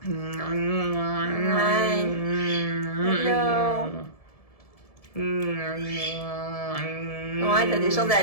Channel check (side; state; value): right; late; 1.7 ms